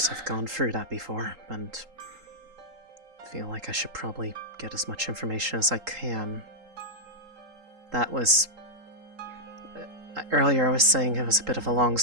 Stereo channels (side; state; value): left; late; 3.8 ms